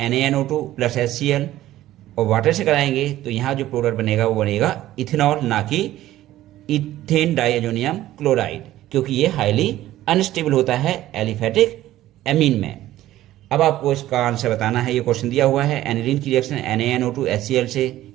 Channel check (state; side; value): quieter; left; 14.5 dB